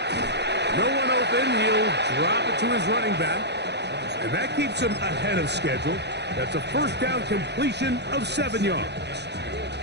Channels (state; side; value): late; left; 0.50 ms